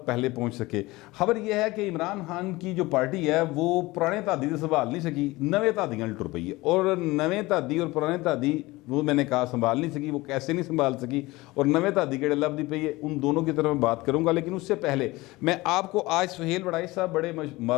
पहले पहुँच सके। खबर यह है कि इमरान खान की जो पार्टी है वो पुराने तादी से संभाल नहीं सकी, नवे तादियाँ टुर पई है। और नवे तादी और पुराने तादी वो मैंने कहा संभाल नहीं सकी, वो कैसे नहीं संभाल सकी और नवे तादी के लब दी पई है, उन दोनों की तरफ मैं बात करूँगा। लेकिन उससे पहले मैं आपको आज सुहेल वड़ाई साहब बड़े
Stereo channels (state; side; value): quieter; right; 20.7 dB